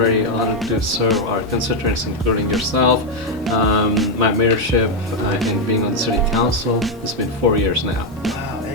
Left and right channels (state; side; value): normal; both; correlation 0.03